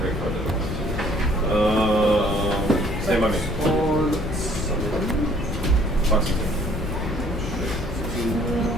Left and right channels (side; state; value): left; noise; rumble, 5 dB below the sound